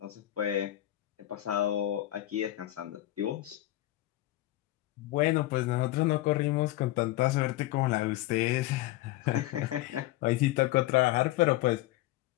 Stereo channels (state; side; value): quieter; right; 15.8 dB